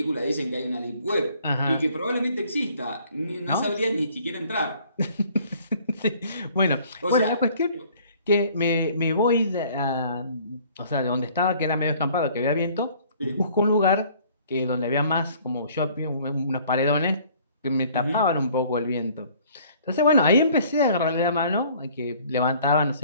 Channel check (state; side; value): inverted; both; correlation -0.56